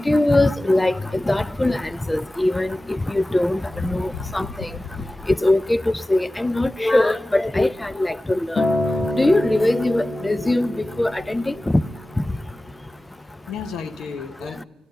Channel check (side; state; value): both; normal; correlation 0.96